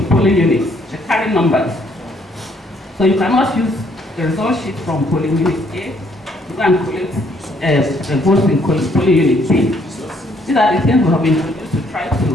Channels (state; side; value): normal; both; correlation 0.67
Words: polling units. They carry numbers. So you cannot use the result sheet from polling unit A to go and collect votes in polling unit B. These are the things we have introduced to try